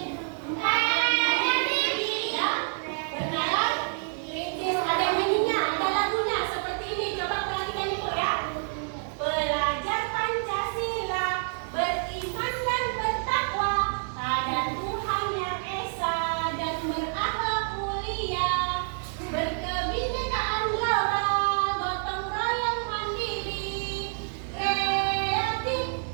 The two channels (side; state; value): left; silent; digital silence